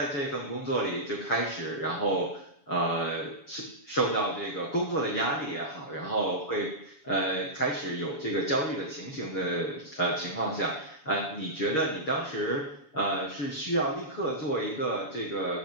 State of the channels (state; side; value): late; right; 7.1 ms